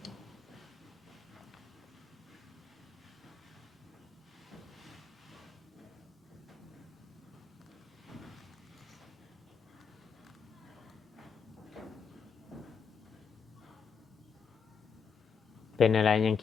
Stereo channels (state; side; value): quieter; right; 6.1 dB